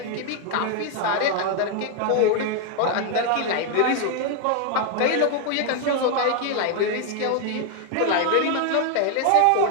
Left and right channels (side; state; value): both; different; correlation 0.01